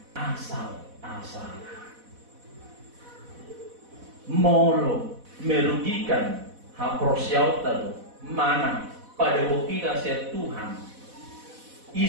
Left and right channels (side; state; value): left; late; 4.1 ms